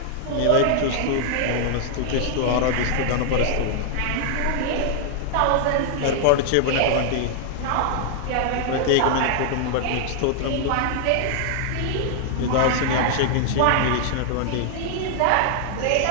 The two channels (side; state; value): both; different; correlation -0.01